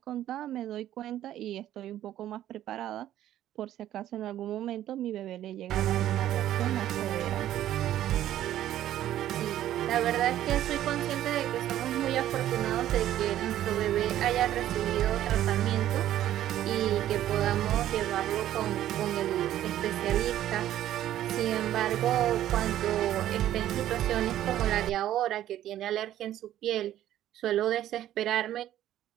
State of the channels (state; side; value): quieter; left; 12.5 dB